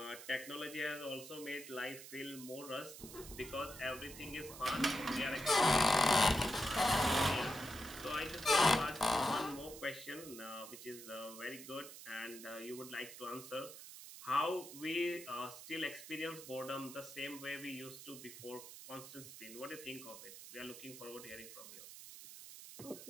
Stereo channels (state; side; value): noise; right; hiss, 13 dB below the sound